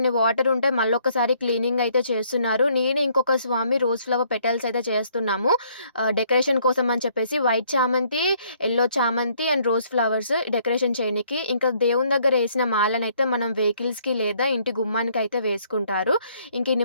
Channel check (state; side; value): inverted; both; correlation -0.65